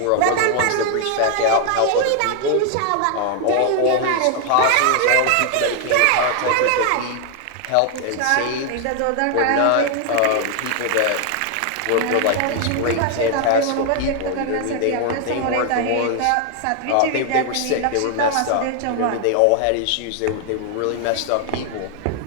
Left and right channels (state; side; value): different; both; correlation 0.00